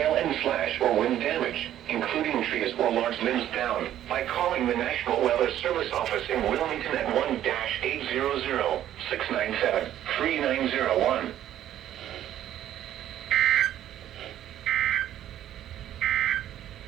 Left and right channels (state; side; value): quieter; left; 11.8 dB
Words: and slash or wind damage, including trees or large limbs down, by calling the National Weather Service office in Wilmington at 1-800-697-3901.